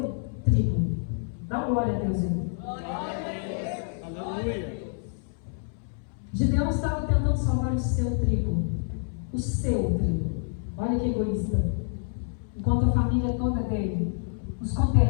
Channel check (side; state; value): right; silent; 60 dB below the other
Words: trigo. Dá glória a Deus aí. Aleluia. Gideão estava tentando salvar o seu trigo. O seu trigo. Olha que egoísta. Enquanto a família toda dele, os